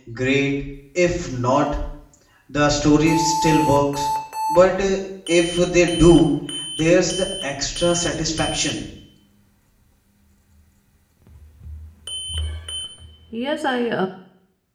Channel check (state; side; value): identical; both; correlation 1.00